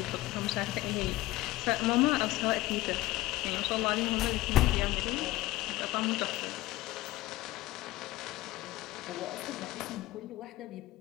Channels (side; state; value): right; quieter; 17.8 dB